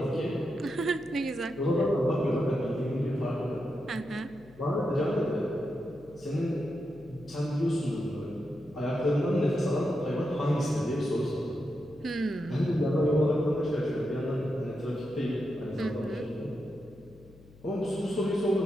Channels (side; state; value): left; noise; hum, 23 dB below the sound